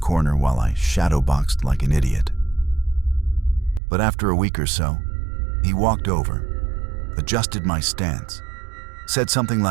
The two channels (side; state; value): left; drops out; at 3.8 s